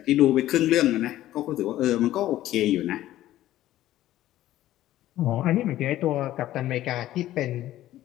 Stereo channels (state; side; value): quieter; right; 14.1 dB